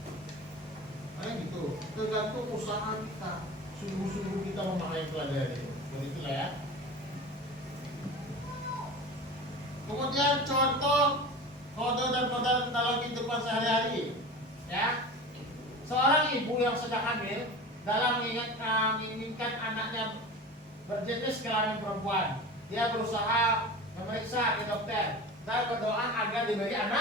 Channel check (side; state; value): both; normal; correlation 0.33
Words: Nah gitu, tergantung usaha kita. Sungguh-sungguh kita memahami pelajaran. Begitulah ya. Kemudian contoh kode dan kode dalam kehidupan sehari-hari. Ya, seorang ibu yang sedang hamil dalam menginginkan anaknya berjenis kelamin perempuan, dia berusaha memeriksa ke dokter dan berdoa agar diberi